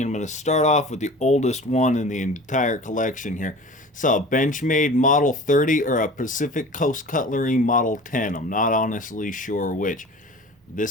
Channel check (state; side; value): normal; both; correlation 0.40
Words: I'm going to start off with the oldest one in the entire collection here. It's a Benchmade Model 30 or a Pacific Coast Cutlery Model 10. I'm not honestly sure which.